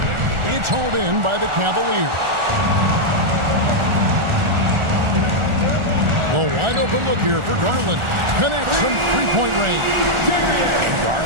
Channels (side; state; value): left; late; 1.4 ms